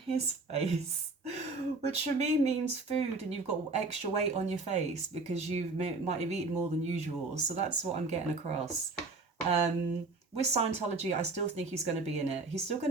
face, which for me means food, and you've got extra weight on your face because you might have eaten more than usual. So that's what I'm getting across. With Scientology, I still think he's going to be in it. He's still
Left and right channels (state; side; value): quieter; left; 3.6 dB